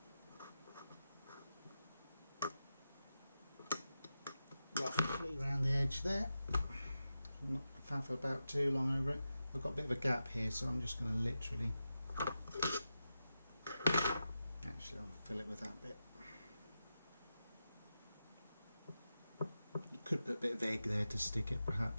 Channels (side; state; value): both; inverted; correlation -0.90